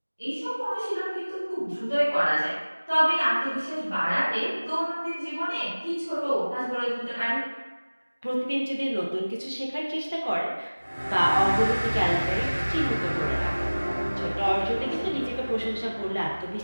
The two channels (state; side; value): inverted; both; correlation -1.00